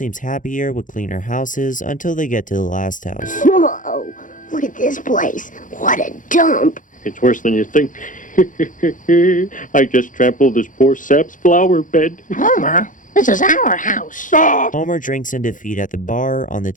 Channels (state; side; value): late; right; 0.38 ms